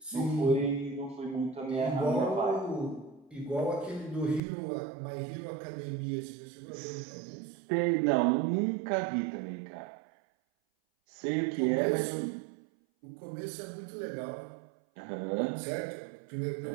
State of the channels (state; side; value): drops out; left; at 4.4 s